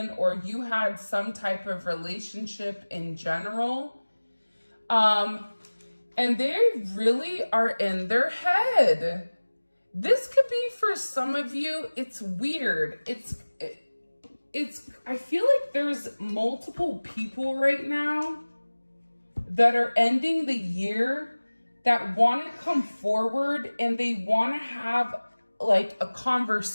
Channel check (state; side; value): inverted; both; correlation -1.00